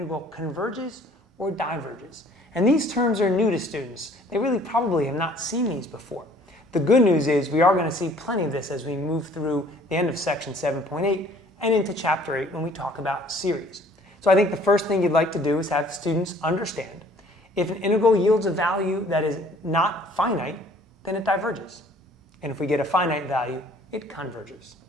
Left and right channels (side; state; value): both; normal; correlation 0.56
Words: converges or diverges. And these terms are new to students. They really probably have not seen these before. The good news is we are going to see plenty of this as we move through the end of section 7.8 and into chapter 8 when we talk about series. So I think the first thing you'd like to do is have students understand if an integral yields a value that is not finite, then it diverges. And if we get a finite value, it converges.